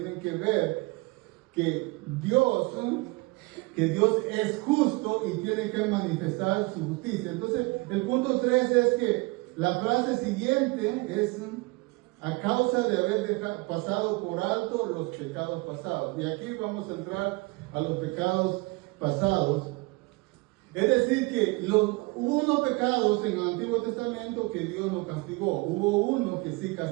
que ver que Dios es justo y tiene que manifestar su justicia. Entonces, el punto 3 es que la frase siguiente es a causa de haber pasado por alto los pecados pasados. Y aquí vamos a entrar a los pecados pasados. Es decir, que hubo unos pecados en el Antiguo Testamento que Dios no castigó. Hubo uno que sí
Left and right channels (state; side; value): quieter; left; 25.2 dB